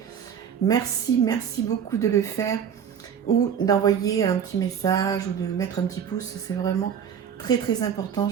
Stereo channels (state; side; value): quieter; left; 8.0 dB